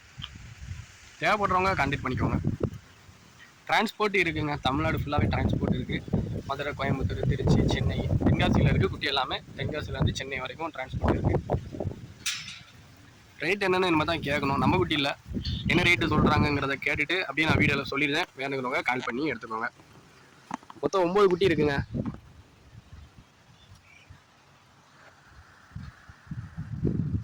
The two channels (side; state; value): both; identical; correlation 1.00